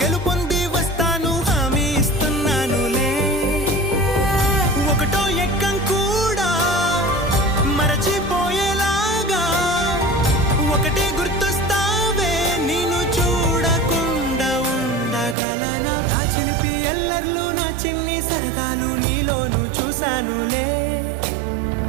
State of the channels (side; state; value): left; drops out; at 15.4 s